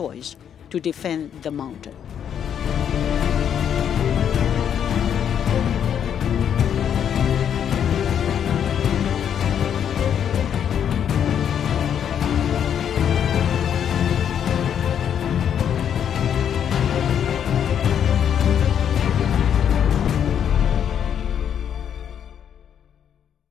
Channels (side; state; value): right; quieter; 8.8 dB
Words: to defend the mountain.